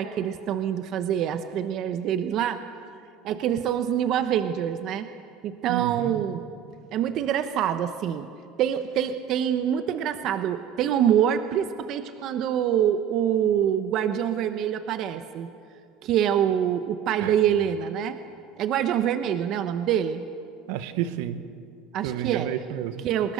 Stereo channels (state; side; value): quieter; left; 9.4 dB